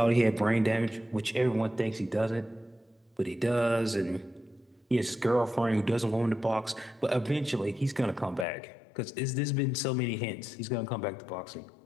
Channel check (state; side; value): drops out; right; at 8.5 s